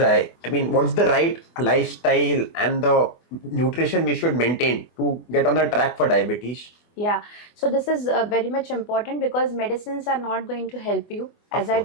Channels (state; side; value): late; right; 24 ms